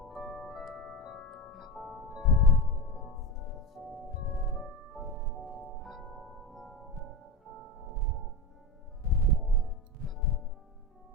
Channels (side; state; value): both; normal; correlation 0.23